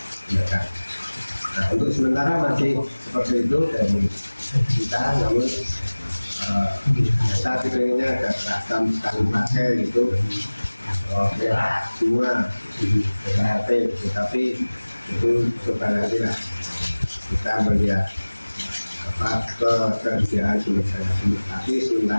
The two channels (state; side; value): inverted; both; correlation -1.00